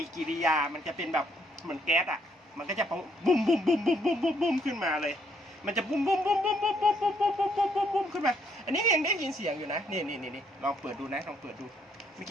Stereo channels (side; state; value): both; normal; correlation 0.70